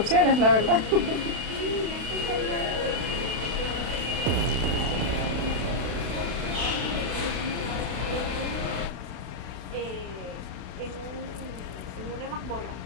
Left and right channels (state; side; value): late; left; 32 ms